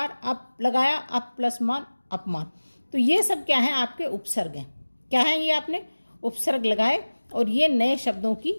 अप लगाया, अप प्लस मान, अपमान। तो ये सब क्या है? आपके उपसर्ग हैं। क्या है ये? आपने उपसर्ग लगाए और ये नए शब्दों की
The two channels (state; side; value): inverted; both; correlation -1.00